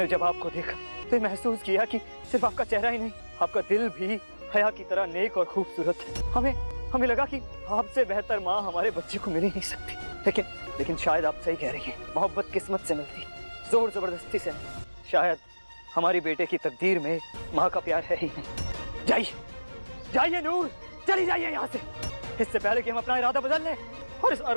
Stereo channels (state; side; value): inverted; both; correlation -1.00